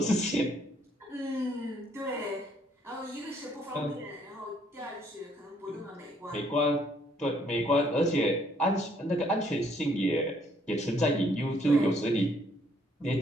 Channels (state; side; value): normal; both; correlation 0.67